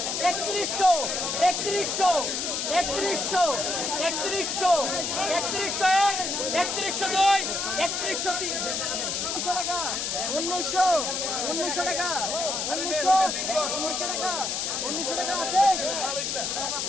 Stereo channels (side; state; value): left; noise; hiss, 1 dB below the sound